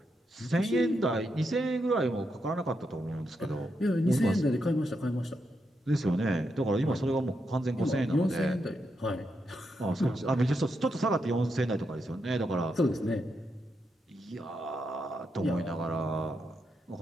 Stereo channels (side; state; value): both; normal; correlation 0.83